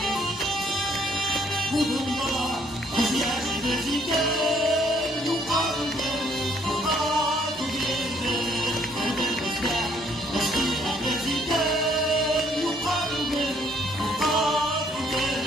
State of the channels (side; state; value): both; normal; correlation 0.66